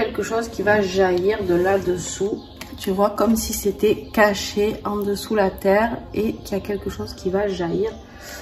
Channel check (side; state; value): both; identical; correlation 1.00